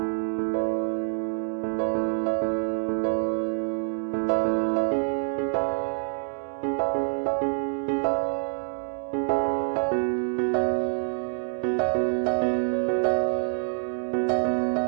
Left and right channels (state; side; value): silent; left; 61 dB below the other